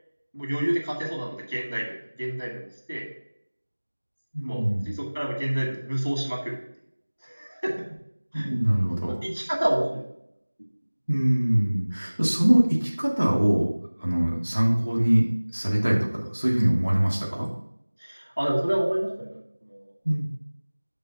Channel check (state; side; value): inverted; both; correlation -1.00